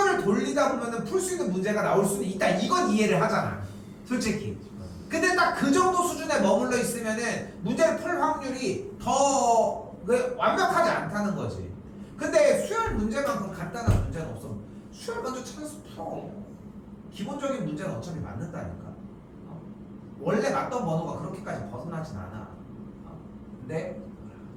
돌리다 보면은 풀 수 있는 문제가 나올 수는 있다. 이건 이해를 하잖아. 솔직히. 근데 딱 그 정도 수준에 머물러 있으면은 문제를 풀 확률이 더 완벽하지 않다는 거지. 근데 수열 문제만큼 간단한 문제는 없어. 수열 먼저 찾아서 풀어. 기본적인 문제는 어차피 맞는다니까. 원래 맞던 번호가 그렇게까지 벗어나진 않아. 근데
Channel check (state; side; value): identical; both; correlation 1.00